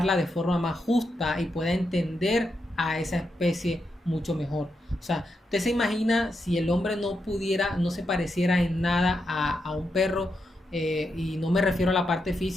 de forma más justa y pueda entender a esa especie mucho mejor. O sea, usted se imagina si el hombre no se pareciera en nada a un perro, y no me refiero a la parte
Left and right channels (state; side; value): normal; both; correlation 0.84